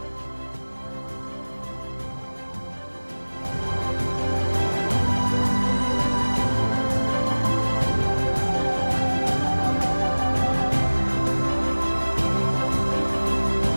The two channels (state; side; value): inverted; both; correlation -1.00